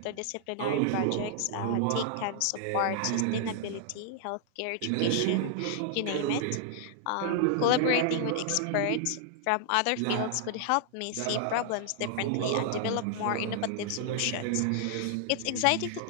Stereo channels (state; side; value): different; both; correlation -0.01